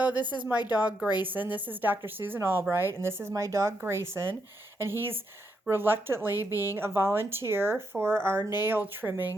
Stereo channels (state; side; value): normal; both; correlation 0.80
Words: this is my dog Grayson. This is Dr. Susan Albright, and this is my dog Grayson. And he's reluctantly being a volunteer for our nail